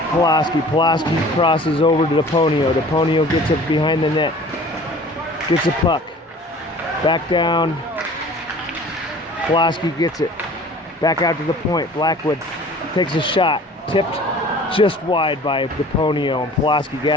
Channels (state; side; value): normal; both; correlation 0.46